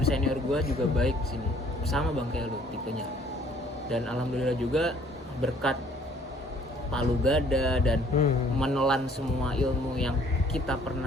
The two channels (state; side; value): normal; both; correlation 0.58